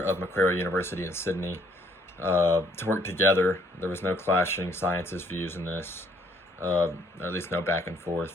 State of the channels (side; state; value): both; normal; correlation 0.65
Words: Macquarie University in Sydney to work together. There was no clashing scientists' views in this, or at least no back and